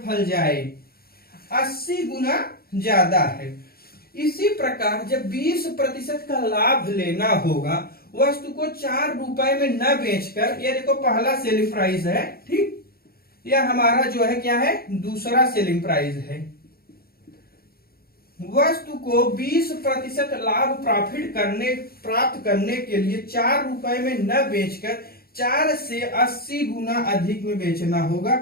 फल जाए 80 गुना ज्यादा है। इसी प्रकार जब 20% का लाभ लेना होगा, वस्तु को 4 रुपए में न बेचकर, ये देखो पहला सेलिंग प्राइस है, ठीक, यह हमारा जो है क्या है, दूसरा सेलिंग प्राइस है। वस्तु को 20% लाभ प्राप्त करने के लिए 4 रुपए में न बेचकर 4 से 80 गुना अधिक में बेचना होगा,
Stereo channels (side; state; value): right; late; 0.44 ms